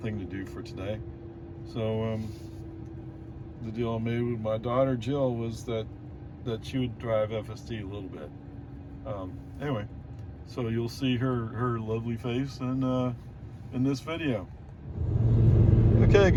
thing to do for today. So the deal I made with my daughter Jill was that she would drive FSD a little bit. Anyway, so you'll see her lovely face in this video. Okay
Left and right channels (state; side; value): identical; both; correlation 1.00